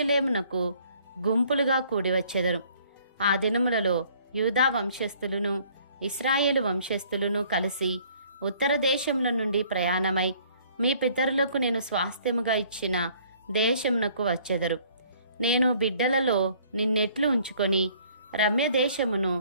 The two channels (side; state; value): both; inverted; correlation -0.58